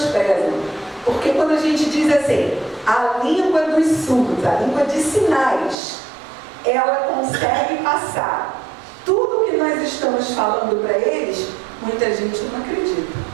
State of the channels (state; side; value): drops out; left; at 5.8 s